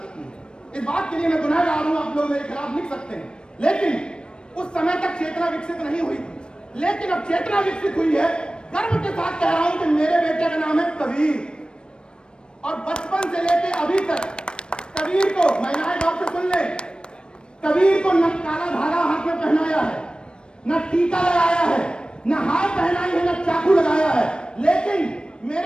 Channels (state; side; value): late; right; 0.053 ms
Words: की है, इस बात के लिए मैं गुनाहगार हूं, आप लोग मेरे खिलाफ लिख सकते हैं। लेकिन उस समय तक चेतना विकसित नहीं हुई थी, लेकिन अब चेतना विकसित हुई है। गर्व के साथ कह रहा हूं कि मेरे बेटे का नाम है कबीर, और बचपन से लेके अभी तक कबीर को, महिलाएं बात से सुन ले, कबीर को न काला धागा हाथ में पहनाया है, न टीका लगाया है, न हार पहनाई है, न चाकू लगाया है, लेकिन